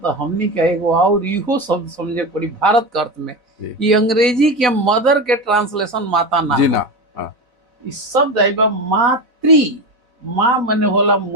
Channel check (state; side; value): late; left; 4.0 ms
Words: हमनी का एगो और इहो शब्द समझे पड़ी भारत के अर्थ में। जी। ये अंग्रेजी के मदर के ट्रांसलेशन माता ना जी है। ना। हाँ। इस शब्द आइल बा मातृ, माँ मने होला